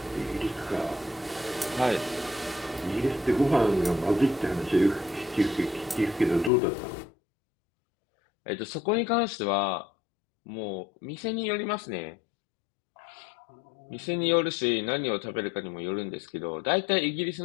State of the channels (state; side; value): drops out; right; at 6.5 s